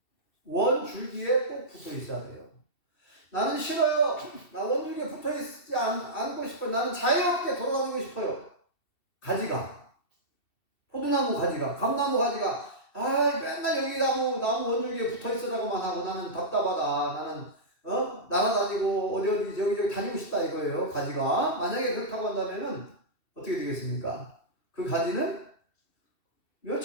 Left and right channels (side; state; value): right; late; 2.7 ms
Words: 원 줄기에 꼭 붙어 있어야 돼요. 나는 싫어요. 나 원줄기에 붙어 있지 않고 싶어요. 나는 자유롭게 돌아다니고 싶어요. 포도나무 가지가, 감나무 가지가, 맨날 여기 나무 원줄기에 붙어 있으라고만 하고 나는 답답하다. 나는, 날아다니고 어디 여기 다니고 싶다 이거예요. 가지가. 만약에 그렇다고 한다면은 어떻게 되겠습니까? 그 가지는